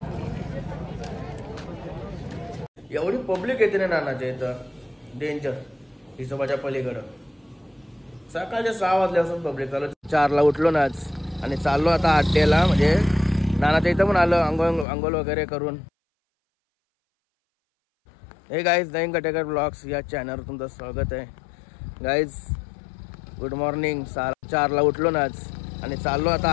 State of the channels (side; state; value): right; drops out; at 14.9 s